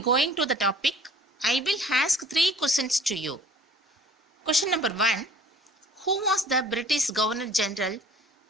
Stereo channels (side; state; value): both; normal; correlation 0.51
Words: to the topic, I will ask 3 questions to you. Question number 1, who was the British Governor General